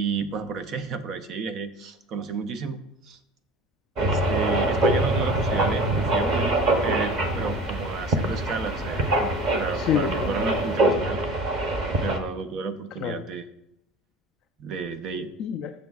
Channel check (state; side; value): normal; both; correlation 0.40